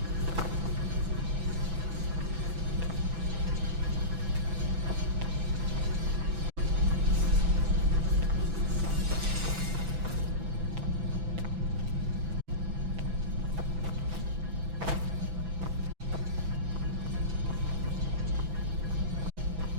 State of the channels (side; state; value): left; late; 6.0 ms